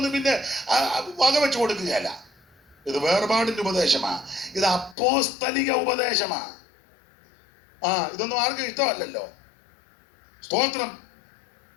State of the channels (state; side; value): drops out; right; at 5.0 s